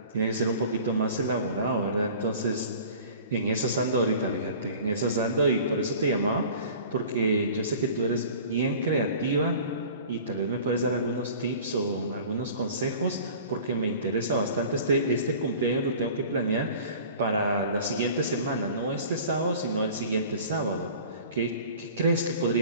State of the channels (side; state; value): both; inverted; correlation -0.44